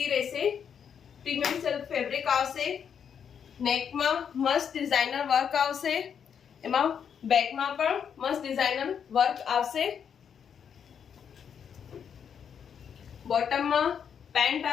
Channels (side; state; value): right; quieter; 7.7 dB